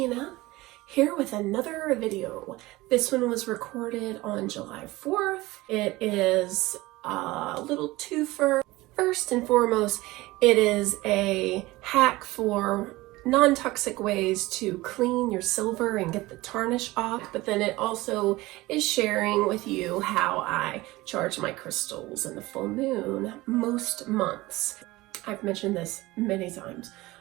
here with another video. This one was recorded on July 4th. It is a little twofer. First and foremost, it is a hack for non-toxic ways to clean your silver and get the tarnish off, but then it also is sharing with you how I charge my crystals in the full moon most months. I've mentioned this many times,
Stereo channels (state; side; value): quieter; left; 19.7 dB